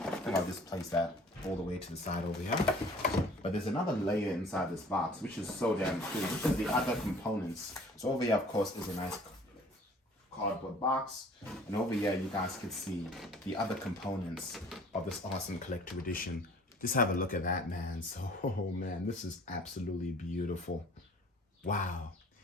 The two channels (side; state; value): both; normal; correlation 0.51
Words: I think I'll just place that all the way to the side over here. But there's another layer inside this box, which is so damn cool. This is the other components. So over here, of course, is a nice cardboard box, and over here you guys can see the other components of this awesome collector edition. Just have a look at that, man. So, oh man, this is absolutely beautiful. Wow.